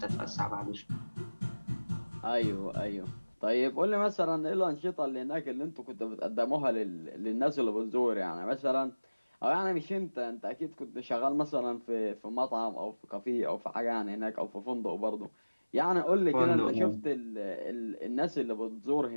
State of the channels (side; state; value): both; inverted; correlation -1.00